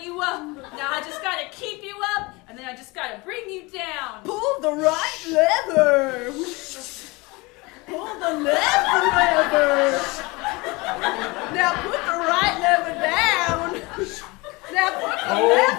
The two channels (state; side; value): quieter; right; 24.8 dB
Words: you up. Now I just gotta keep you up, and then I just gotta bring you down. Pull the right lever. Pull the left lever. Now put the right lever down. Now put the